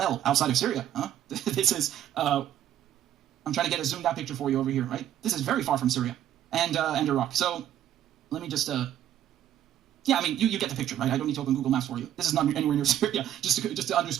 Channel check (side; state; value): left; quieter; 11.4 dB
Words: outside of Syria. Huh? This is, I'm trying to get a zoomed out picture for you over here, right? This is very far from Syria and Iraq. So let me just Yeah, I mean, you get the picture, right? I don't need to open Google Maps for you. This is not anywhere near Syria, just to